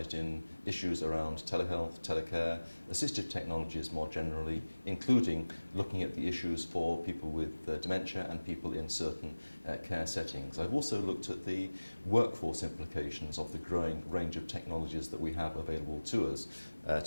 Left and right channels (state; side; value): inverted; both; correlation -1.00